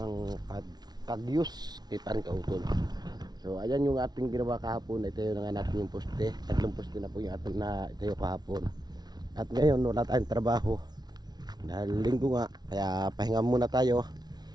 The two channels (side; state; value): left; late; 0.19 ms